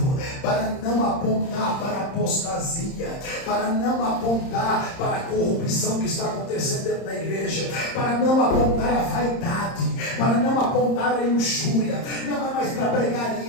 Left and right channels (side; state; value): right; late; 30 ms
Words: para não apontar para a apostasia, para não apontar para a corrupção que está acontecendo dentro da igreja, para não apontar a vaidade, para não apontar a luxúria. Não é mais para pregar